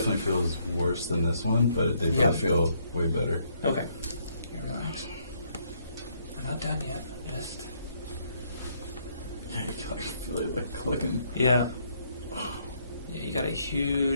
feels worse than this one, but they both feel way better. Okay. Here, relax. We're not done yet. Just... Yeah, you can like feel it like clicking. Yeah. Yeah, you got a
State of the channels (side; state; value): both; inverted; correlation -0.71